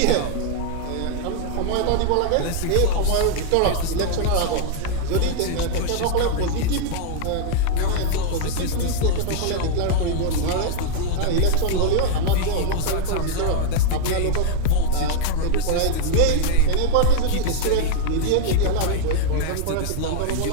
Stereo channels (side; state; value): both; different; correlation -0.01